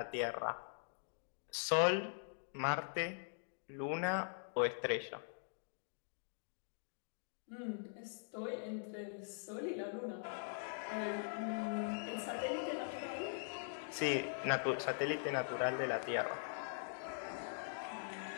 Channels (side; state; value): right; silent; digital silence